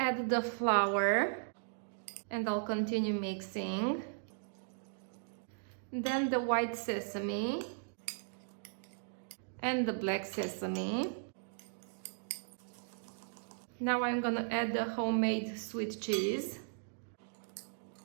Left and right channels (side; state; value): left; silent; digital silence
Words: the flour and I'll continue mixing. Then the white sesame and the black sesame. Now I'm gonna add the homemade sweet cheese.